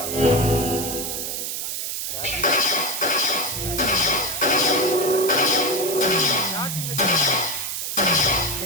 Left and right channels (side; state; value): right; noise; hiss, 4 dB below the sound